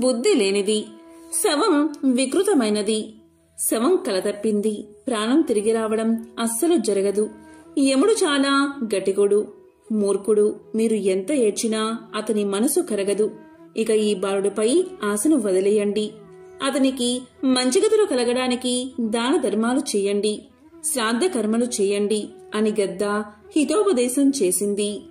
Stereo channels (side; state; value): both; identical; correlation 1.00